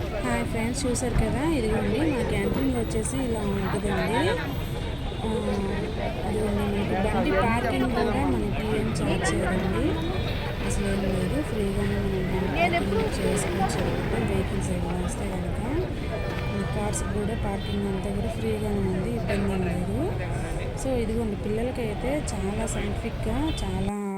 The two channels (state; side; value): identical; both; correlation 1.00